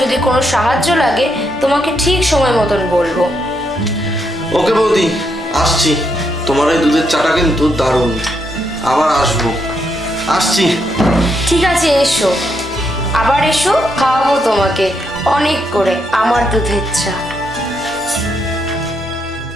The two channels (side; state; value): both; normal; correlation 0.78